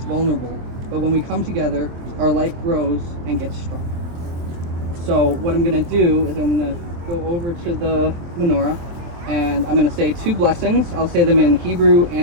vulnerable, but when we come together, our light grows and gets strong. So what I'm going to do is I'm going to go over to the menorah, and I'm going to say 2 blessings. I'll say them in Hebrew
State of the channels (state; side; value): late; left; 24 ms